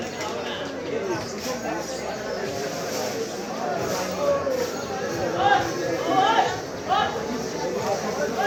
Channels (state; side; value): identical; both; correlation 1.00